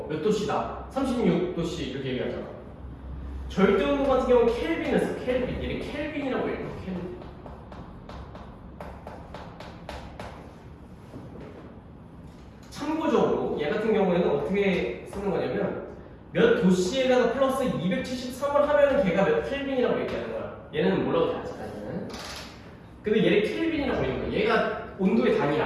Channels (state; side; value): identical; both; correlation 1.00